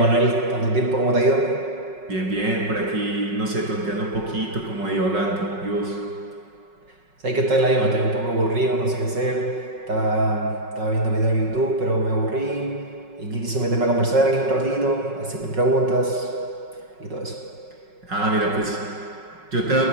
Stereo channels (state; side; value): late; left; 5.4 ms